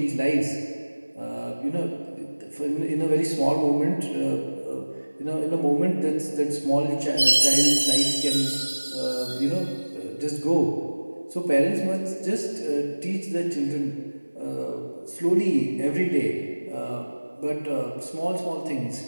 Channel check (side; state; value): both; inverted; correlation -1.00